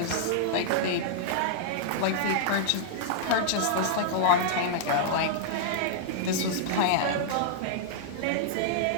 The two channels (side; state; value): both; different; correlation -0.01